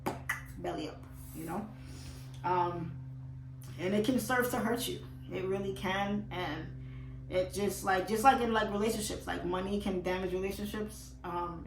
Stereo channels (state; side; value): identical; both; correlation 1.00